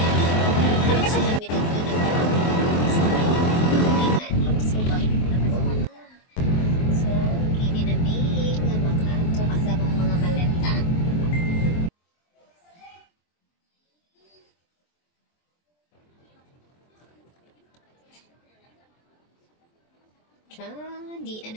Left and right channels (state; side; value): late; right; 23 ms